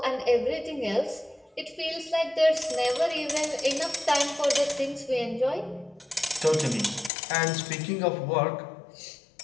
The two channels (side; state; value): right; drops out; at 7.1 s